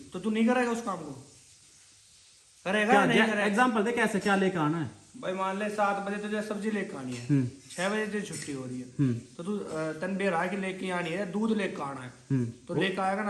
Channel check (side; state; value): both; identical; correlation 1.00